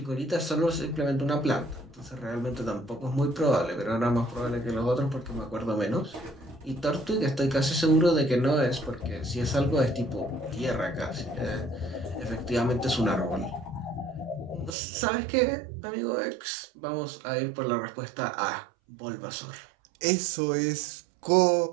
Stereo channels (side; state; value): left; drops out; at 14.8 s